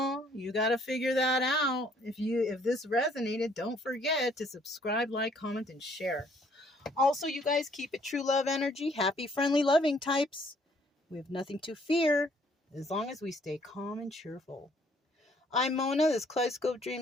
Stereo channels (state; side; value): normal; both; correlation 0.63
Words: You got to figure that out. If this resonated, don't forget to subscribe, like, comment, and share. Also, you guys, keep it true love energy. Happy, friendly, loving types. We have nothing to fear as long as we stay calm and cheerful. I'm Mona. This is Kaleidoscope